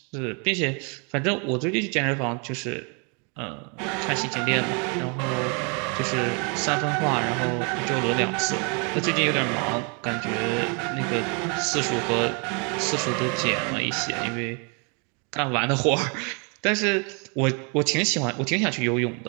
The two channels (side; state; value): left; quieter; 35.2 dB